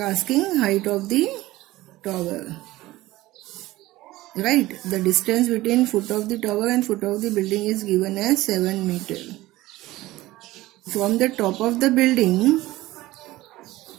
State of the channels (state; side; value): quieter; left; 17.7 dB